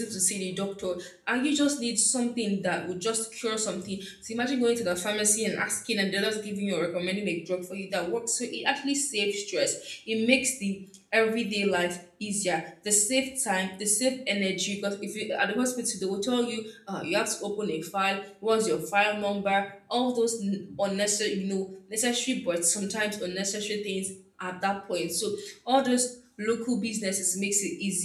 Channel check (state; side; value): identical; both; correlation 1.00